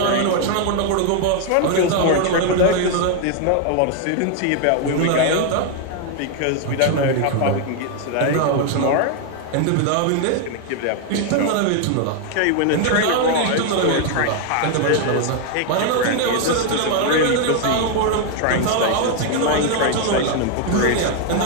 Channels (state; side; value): different; both; correlation 0.00